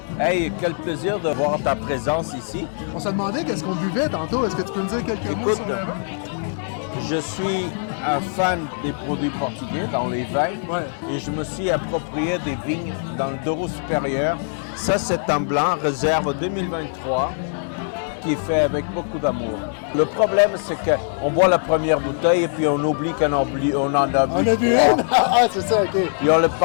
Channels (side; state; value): right; silent; digital silence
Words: Hey, quel plaisir de voir ta présence ici. On s'est demandé qu'est-ce qu'on buvait tantôt. Est-ce que tu peux nous dire quelques mots sur le vin? Je suis un fan des produits portugais dans les vins Ouais. et je me suis approprié des vignes dans le Douro supérieur. Ça, c'est un blanc réserve 2023 qui est fait avec beaucoup d'amour. Le problème, c'est qu'on boit la première bouteille et puis on oublie qu'on en a bu. On a bu une? Ah, c'est ça, OK. Et on le